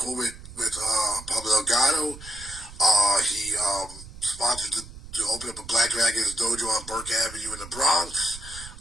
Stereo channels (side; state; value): right; noise; rumble, 15 dB below the sound